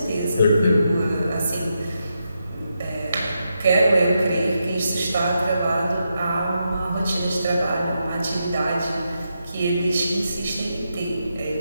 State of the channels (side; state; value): both; inverted; correlation -0.84